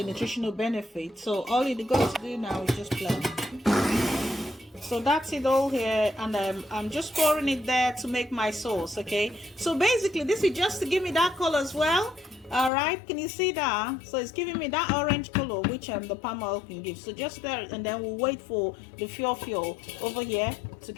nutritional benefit. So all you got to do now is just blend. So that's it all here, and I'm just pouring it there to make my sauce. Okay, so basically this is just to give me that color as well. All right, can you see that? So it's giving me that orange color which the palm oil can give. So just there, and then we'll wait for the Fio-Fio over here to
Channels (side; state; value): right; drops out; at 12.7 s